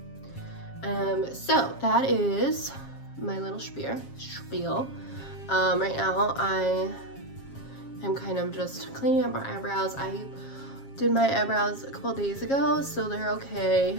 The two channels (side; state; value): right; late; 7.4 ms